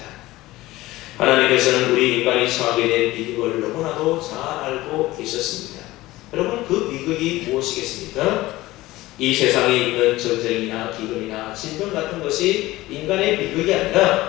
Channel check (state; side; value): quieter; right; 18.0 dB